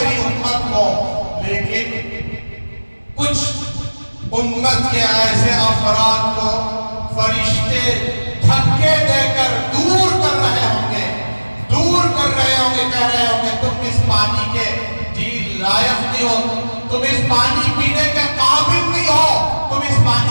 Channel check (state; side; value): inverted; both; correlation -1.00